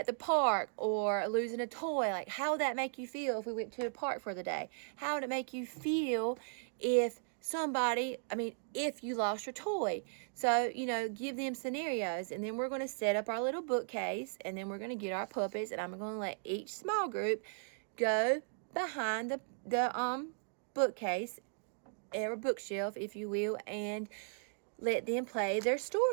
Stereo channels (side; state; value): left; silent; digital silence